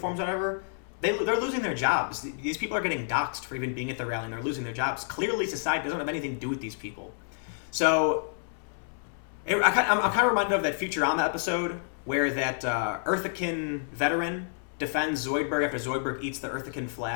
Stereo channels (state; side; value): silent; right; 59 dB below the other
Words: or whatever, they're losing their jobs. These people are getting doxxed for even being at the rally, and they're losing their jobs. Clearly, society doesn't have anything to do with these people. So, I'm kind of reminded of that Futurama episode where that Earthican veteran defends Zoidberg after Zoidberg eats the Earthican